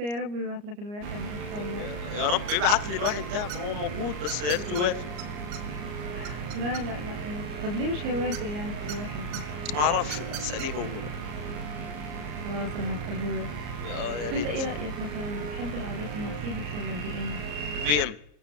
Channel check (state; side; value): late; left; 34 ms